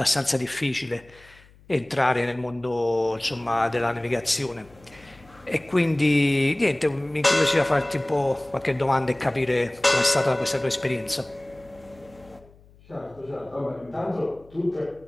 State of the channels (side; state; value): left; noise; hum, 26 dB below the sound